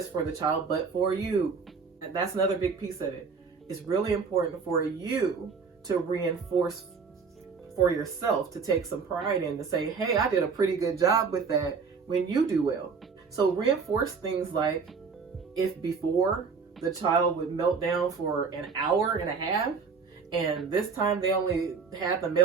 for the child, but for you. And that's another big piece of it. It's really important for you to reinforce for yourself, to take some pride in, to say, hey, I did a pretty good job with that when you do well. So reinforce things like, if before the child would melt down for an hour and a half, and this time they only had the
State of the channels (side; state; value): left; quieter; 5.3 dB